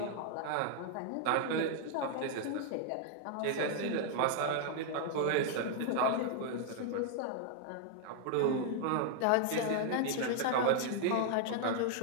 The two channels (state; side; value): different; both; correlation 0.00